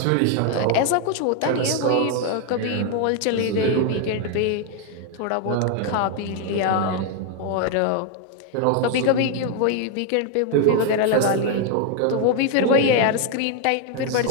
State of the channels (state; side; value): different; both; correlation 0.01